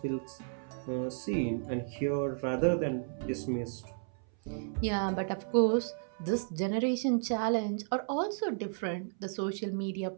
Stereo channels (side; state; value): left; silent; 56 dB below the other